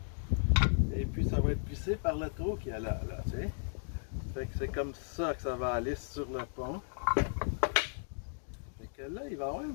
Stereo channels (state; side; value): silent; right; digital silence